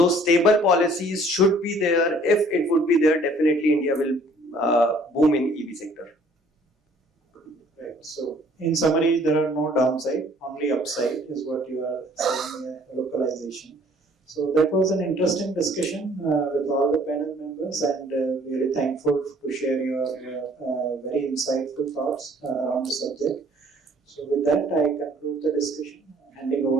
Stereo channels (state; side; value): normal; both; correlation 0.57